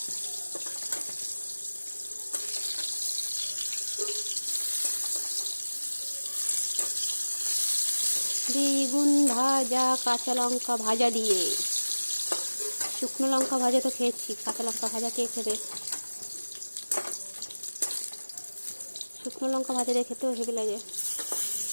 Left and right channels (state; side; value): inverted; both; correlation -1.00